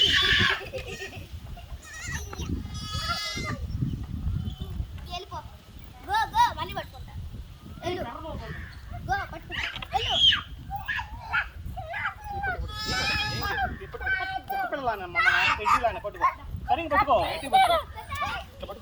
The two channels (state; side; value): identical; both; correlation 1.00